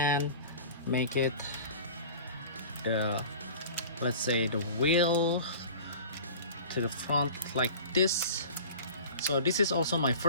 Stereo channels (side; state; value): both; inverted; correlation -0.40